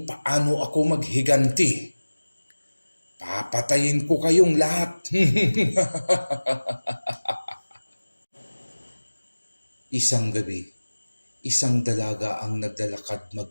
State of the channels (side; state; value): both; inverted; correlation -1.00